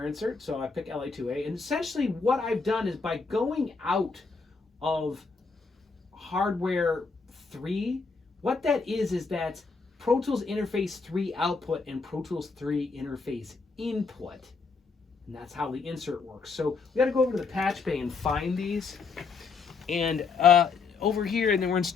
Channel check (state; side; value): quieter; right; 4.7 dB